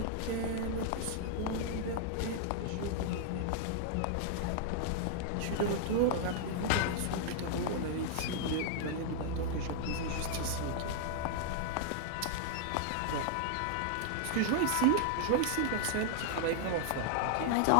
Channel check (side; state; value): both; different; correlation -0.01